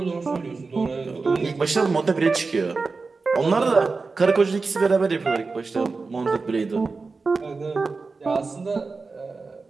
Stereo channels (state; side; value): quieter; left; 4.1 dB